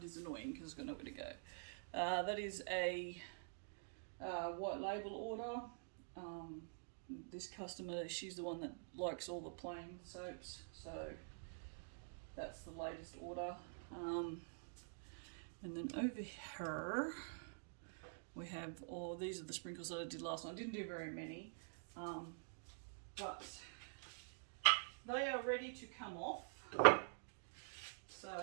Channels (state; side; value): silent; left; digital silence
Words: is annoying because I've got nowhere to go. That is a white label order. This customer, she's the one that likes all the plain soaps, so that's the latest order. And then over here we have these are the sprinkles that I did last night. I didn't do very many, but they are ready to come off.